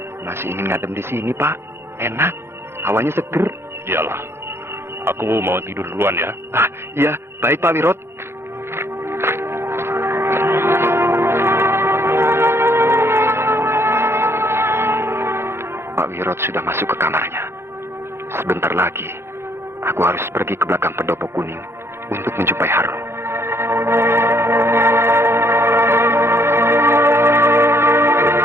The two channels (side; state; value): left; late; 0.12 ms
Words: Masih ingin ngadem di sini, Pak. Enak. Hawanya seger. Iyalah. Aku mau tidur duluan ya. Iya. Baik, Pak Wirot. Pak Wirot sudah masuk ke kamarnya. Sebentar lagi, aku harus pergi ke belakang pendopo kuning untuk menjumpai Harun.